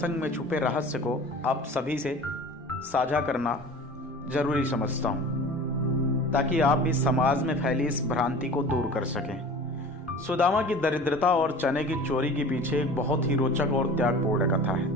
में छुपे रहस्य को आप सभी से साझा करना जरूरी समझता हूं, ताकि आप भी समाज में फैली इस भ्रांति को दूर कर सकें। सुदामा की दरिद्रता और चने की चोरी के पीछे एक बहुत ही रोचक और त्यागपूर्ण कथा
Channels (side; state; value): both; normal; correlation 0.40